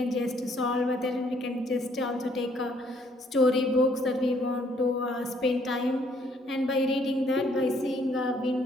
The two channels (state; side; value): normal; both; correlation 0.65